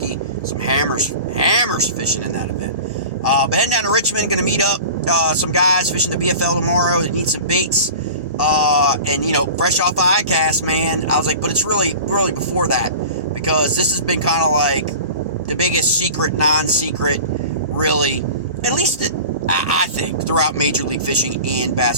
Some hammers fishing in that event. But heading down to Richmond, going to meet up some guys fishing the BFL tomorrow that need some baits. And, you know, fresh off ICAST, man, I was like, but it's really before that, because this has been kind of like the biggest secret, non-secret, really, at least I think, throughout Major League Fishing and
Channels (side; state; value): both; inverted; correlation -0.37